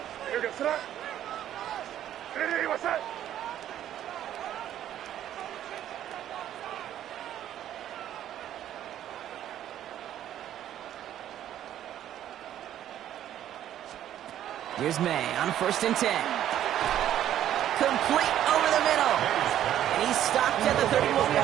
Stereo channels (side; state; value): left; quieter; 11.5 dB